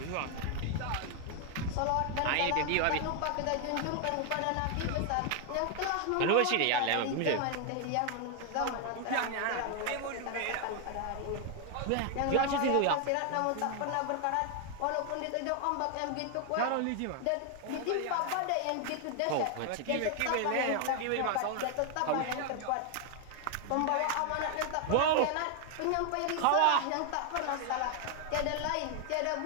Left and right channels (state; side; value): different; both; correlation 0.00